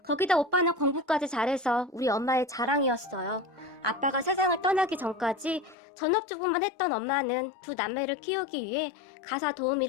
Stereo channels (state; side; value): drops out; right; at 5.8 s